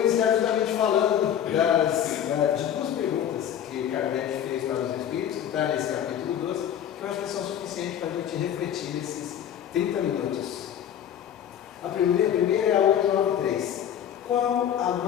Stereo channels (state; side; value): quieter; right; 9.7 dB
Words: justamente falando de 2 perguntas que Kardec fez para os Espíritos, que está nesse capítulo 12, que eu acho que são suficientes para a gente refletir nesses 30 minutos. A primeira é a 893. Qual a